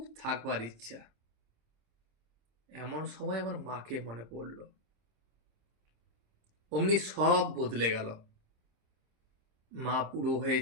থাকবার ইচ্ছা। এমন সময় আমার মাকে মনে পড়ল। অমনি সব বদলে গেল। মা বুড়ো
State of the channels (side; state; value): left; late; 26 ms